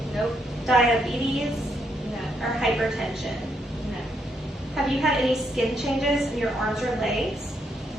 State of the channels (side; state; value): both; normal; correlation 0.76